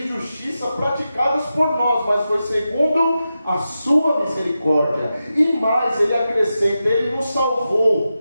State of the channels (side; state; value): both; inverted; correlation -0.91